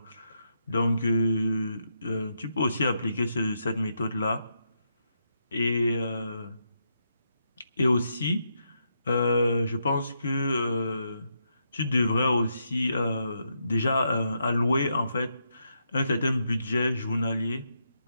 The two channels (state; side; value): inverted; both; correlation -0.81